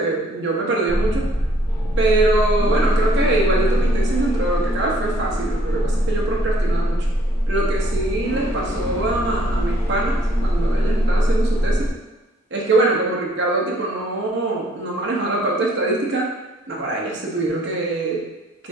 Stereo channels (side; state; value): both; normal; correlation 0.62